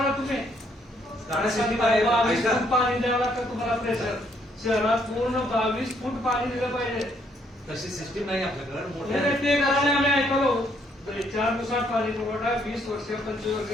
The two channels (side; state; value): both; normal; correlation 0.70